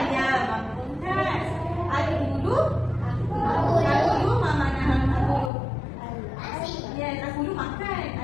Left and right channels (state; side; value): drops out; right; at 5.5 s